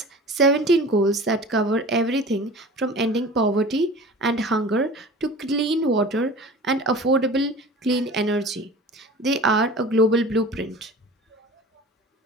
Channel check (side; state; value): both; normal; correlation 0.39